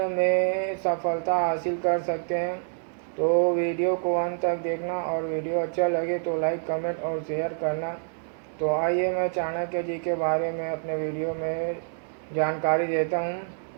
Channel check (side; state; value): left; silent; digital silence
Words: में सफलता हासिल कर सकते हैं। तो वीडियो को अंत तक देखना, और वीडियो अच्छा लगे तो लाइक, कमेंट और शेयर करना। तो आइए मैं चाणक्य जी के बारे में अपने वीडियो में जानकारी देता हूँ।